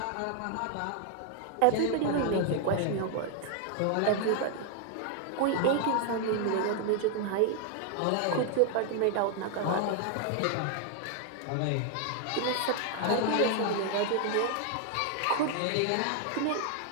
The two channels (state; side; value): different; both; correlation 0.00